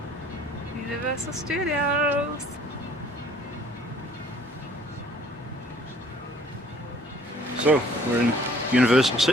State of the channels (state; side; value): normal; both; correlation 0.56